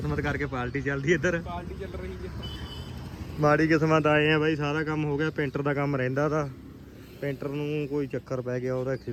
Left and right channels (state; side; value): identical; both; correlation 1.00